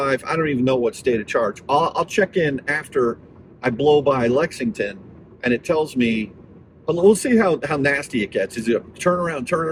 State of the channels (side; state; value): both; identical; correlation 1.00